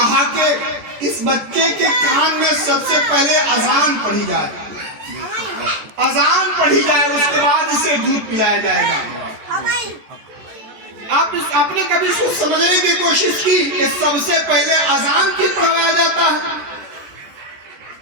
कि इस बच्चे के कान में सबसे पहले अजान पढ़ी जाए, अजान पढ़ी जाए, उसके बाद इसे दूध पिलाया जाएगा। आपने कभी सोच समझने की कोशिश की कि सबसे पहले अजान क्यों पढ़ाया जाता है?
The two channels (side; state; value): left; late; 14 ms